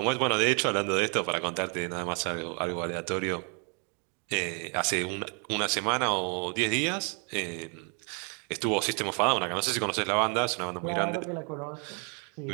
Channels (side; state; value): left; quieter; 37.5 dB